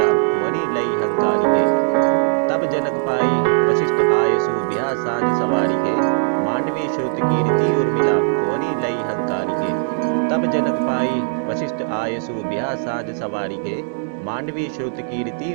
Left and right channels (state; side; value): silent; left; digital silence